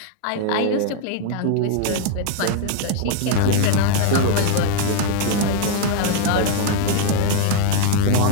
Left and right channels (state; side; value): different; both; correlation 0.00